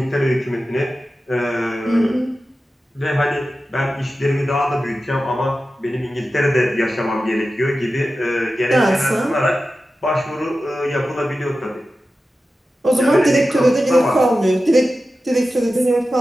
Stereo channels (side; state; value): both; normal; correlation 0.93